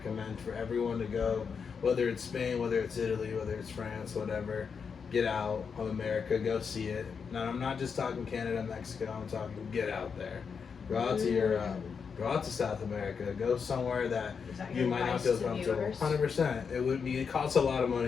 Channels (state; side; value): quieter; right; 6.1 dB